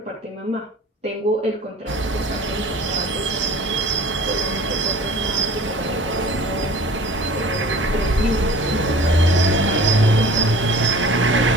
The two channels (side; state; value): both; normal; correlation 0.45